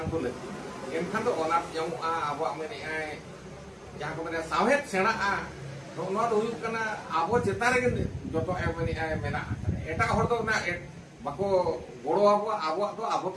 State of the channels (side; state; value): both; identical; correlation 1.00